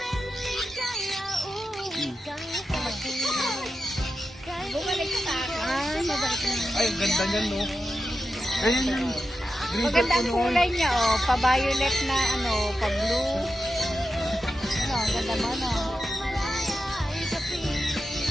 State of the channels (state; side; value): normal; both; correlation 0.90